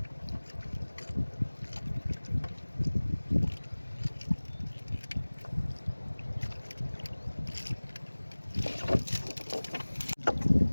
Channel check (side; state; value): both; inverted; correlation -1.00